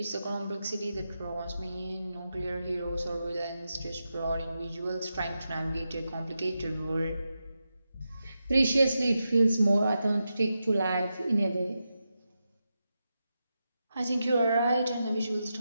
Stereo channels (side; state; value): both; inverted; correlation -0.89